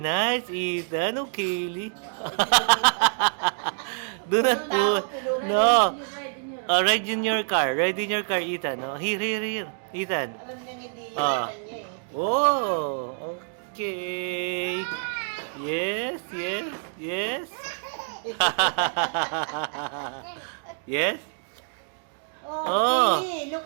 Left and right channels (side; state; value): left; silent; digital silence